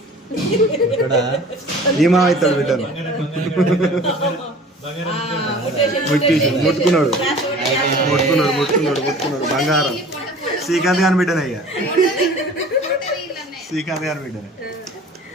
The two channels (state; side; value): normal; both; correlation 0.45